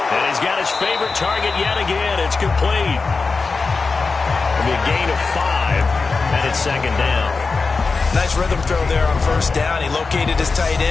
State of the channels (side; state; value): right; quieter; 4.3 dB